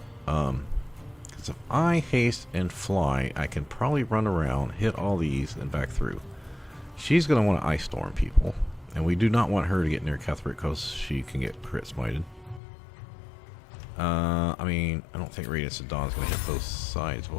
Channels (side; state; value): right; drops out; at 12.6 s